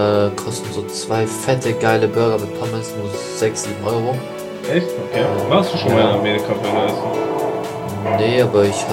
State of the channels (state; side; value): identical; both; correlation 1.00